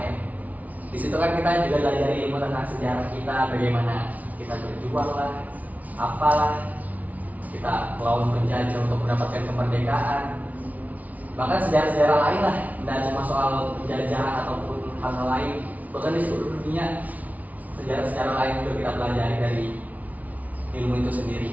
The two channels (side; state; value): left; late; 0.072 ms